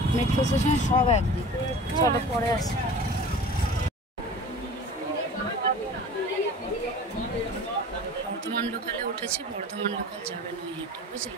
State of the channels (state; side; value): normal; both; correlation 0.40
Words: মেট্রো স্টেশন সব একদিক। চলো পরে আসি। বর্ধমান লোকালে উঠেছি, বর্ধমান লোকাল যাবে নৈহাটি,